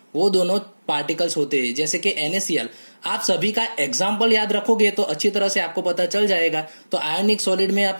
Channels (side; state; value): both; inverted; correlation -1.00